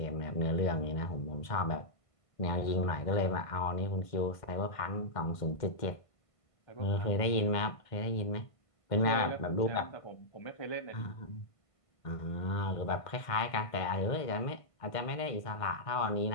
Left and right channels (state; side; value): late; right; 1.5 ms